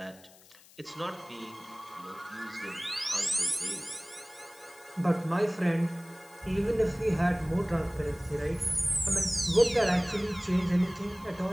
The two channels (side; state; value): left; noise; hiss, 24 dB below the sound